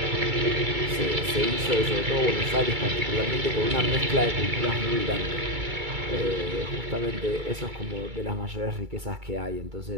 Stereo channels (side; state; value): left; late; 2.3 ms